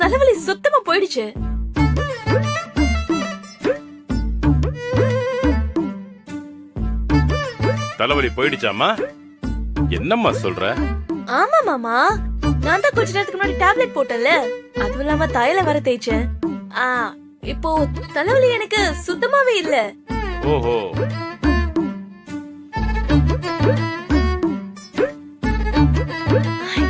சுத்தமா போயிடுச்சு. தலைவலி போயிடுச்சாமா? என்னம்மா சொல்ற? ஆமா மாமா, நான் தான் கொஞ்ச நேரத்துக்கு முன்னாடி டேப்லெட் போட்டேன்ல, அதுவும் இல்லாம தைல வர தேய்ச்சேன். இப்போ தலைவலி எனக்கு சுத்தமாவே இல்ல. ஓஹோ.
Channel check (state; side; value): identical; both; correlation 1.00